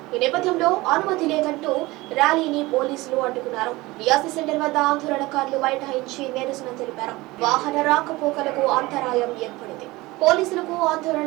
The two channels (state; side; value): quieter; left; 20.7 dB